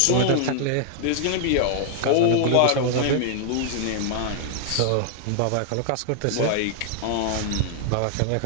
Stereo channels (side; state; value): both; different; correlation 0.00